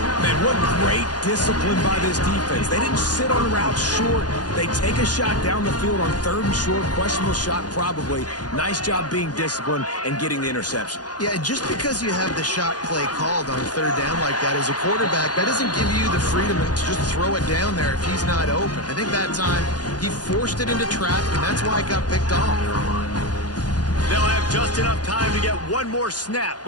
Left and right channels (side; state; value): right; late; 0.69 ms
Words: Man, what great discipline by this defense. They didn't sit on routes short. They take a shot down the field on 3rd and short. Questionable shot probably. Nice job being disciplined and getting the interception. Yeah, just because you have the shot play called on 3rd down like that as a quarterback, that doesn't give you the freedom to just throw it down there if he's not open. I think that time he forced it into traffic, and that's why it got picked off. They'll have just enough time to get one more snap